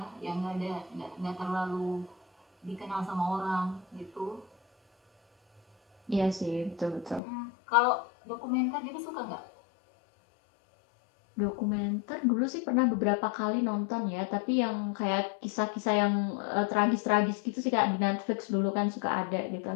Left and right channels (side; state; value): right; drops out; at 7.2 s